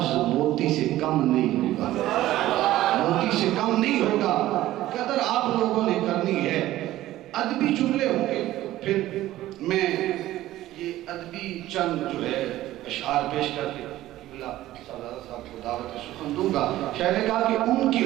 موتی سے کم نہیں ہوگا، موتی سے کم نہیں ہوگا۔ قدر آپ لوگوں نے کرنی ہے، ادبی جملے ہوں گے، پھر میں یہ ادبی چند جو ہے اشعار پیش کر کے صاحب کو دعوت سخن دوں گا۔ شاید نے کہا کہ ان کی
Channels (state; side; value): quieter; left; 15.0 dB